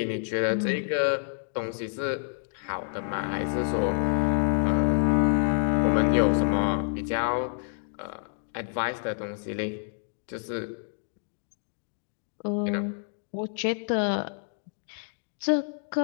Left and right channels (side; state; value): right; silent; digital silence